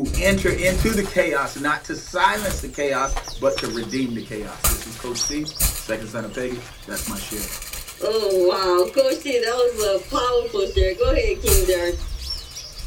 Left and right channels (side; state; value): both; identical; correlation 1.00